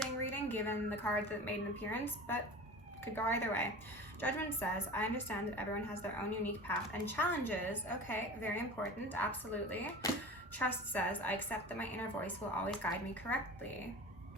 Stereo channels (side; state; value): both; normal; correlation 0.35